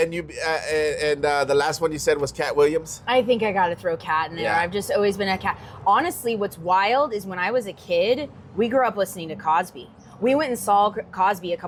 you the last one you said was Cat Williams. I think I got to throw Cat in there. I've just always been a Cat. Honestly, what's wild is when I was a kid, we grew up listening to Cosby. We went and saw Cosby a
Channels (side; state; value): both; identical; correlation 1.00